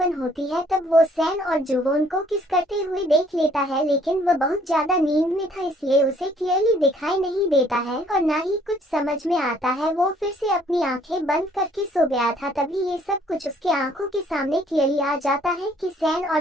होती है। तब वो सैन और जुवोन को किस करते हुए देख लेता है, लेकिन वह बहुत ज्यादा नींद में था इसलिए उसे क्लियरली दिखाई नहीं देता है और ना ही कुछ समझ में आता है। वो फिर से अपनी आंखें बंद करके सो गया था। तभी ये सब कुछ उसके आंखों के सामने क्लियरली आ जाता है कि सैन और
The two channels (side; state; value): both; normal; correlation 0.61